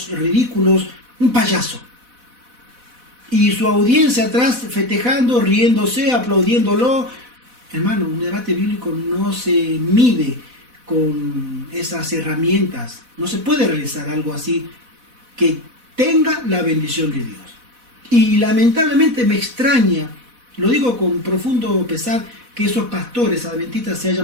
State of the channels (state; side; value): late; left; 4.1 ms